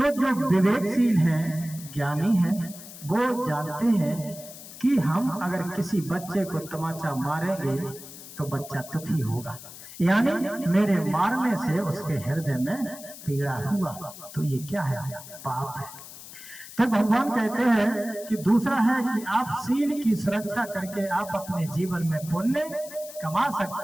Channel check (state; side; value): noise; left; hiss, 15 dB below the sound